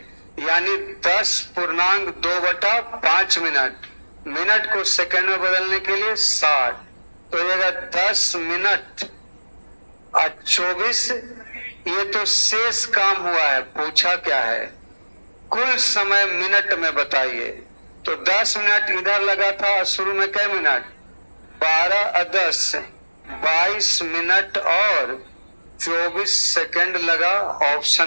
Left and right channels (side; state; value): both; inverted; correlation -1.00